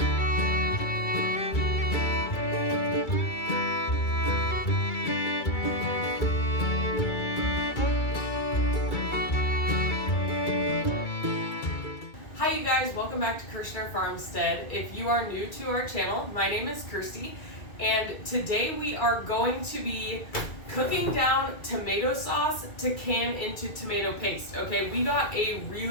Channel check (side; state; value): right; late; 2.3 ms